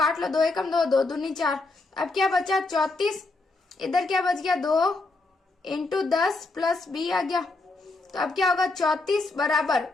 लो, 2 एकम 2, 2 दूनी 4। अब क्या बचा? 34। इधर क्या बच गया? 2 इंटू 10 प्लस बी आ गया। तो अब क्या होगा? 34 बराबर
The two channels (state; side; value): quieter; right; 3.3 dB